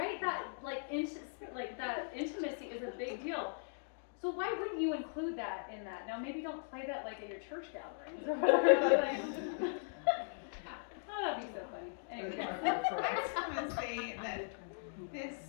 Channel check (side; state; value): right; silent; digital silence